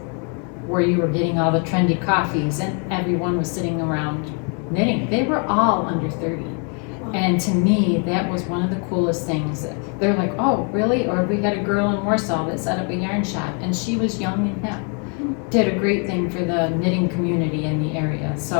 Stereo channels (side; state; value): right; quieter; 38.4 dB